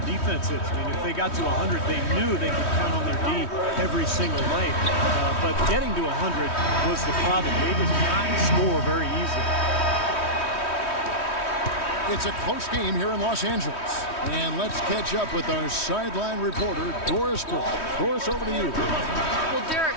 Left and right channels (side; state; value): right; late; 3.1 ms